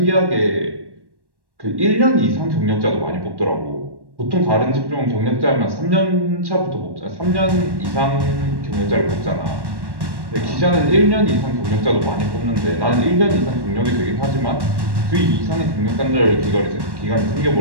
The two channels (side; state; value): left; late; 1.1 ms